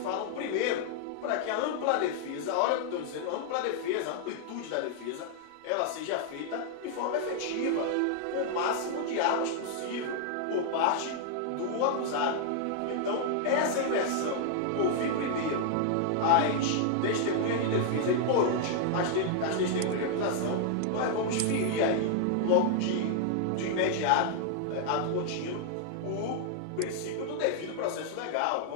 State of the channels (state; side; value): different; both; correlation -0.01